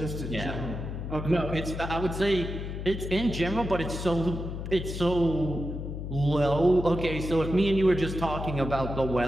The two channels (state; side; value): noise; left; hum, 6 dB below the sound